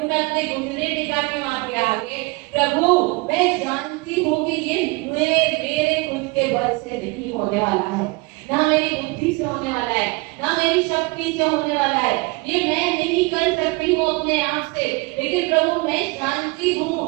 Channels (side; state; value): left; quieter; 25.9 dB